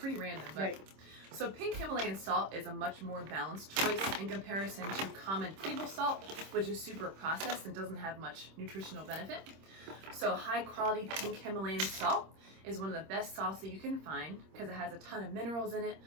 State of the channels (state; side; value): late; left; 26 ms